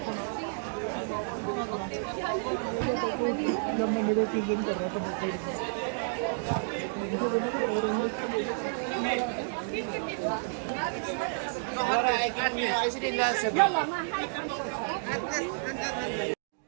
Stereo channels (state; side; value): silent; left; digital silence